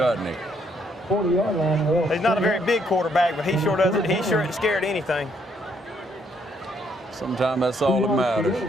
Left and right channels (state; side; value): normal; both; correlation 0.71